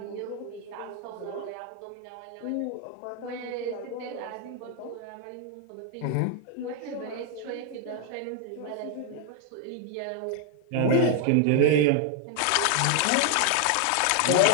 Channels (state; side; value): different; both; correlation 0.01